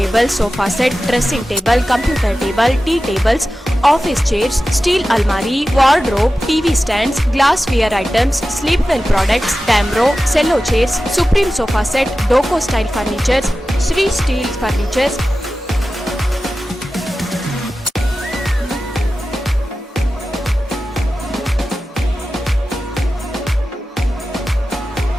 sofa set, dressing table, computer table, tea tables, office chairs, steel almari, wardrobe, TV stands, glassware items, sleepwell products, Damro, cello chairs, Supreme sofa set, Doco style furnitures, Sri Steel furnitures.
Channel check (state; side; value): normal; both; correlation 0.94